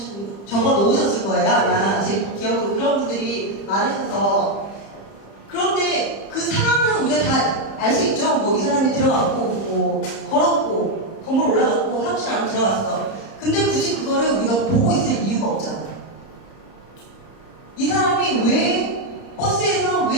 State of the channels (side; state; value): right; late; 30 ms